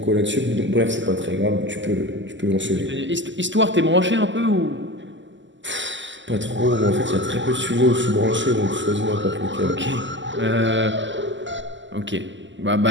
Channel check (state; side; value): late; left; 0.54 ms